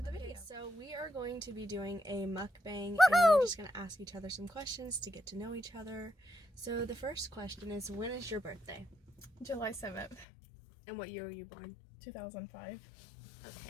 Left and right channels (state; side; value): drops out; right; at 10.2 s